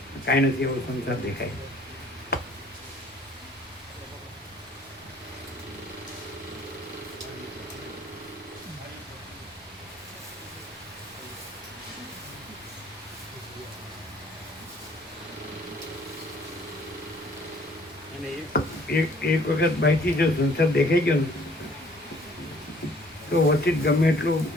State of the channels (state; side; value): normal; both; correlation 0.58